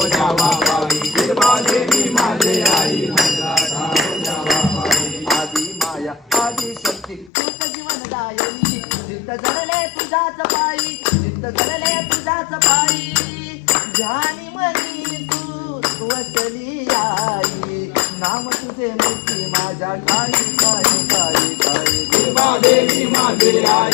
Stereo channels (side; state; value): right; drops out; at 7.3 s